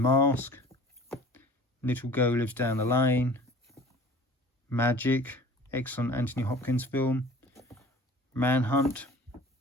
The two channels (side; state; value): both; normal; correlation 0.46